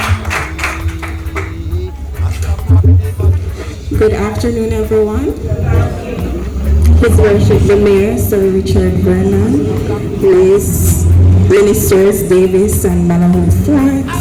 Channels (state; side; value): identical; both; correlation 1.00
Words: Good afternoon, everyone. His Worship the Mayor, Sir Richard Vernon, Ministers Davis and Malahoo Forte,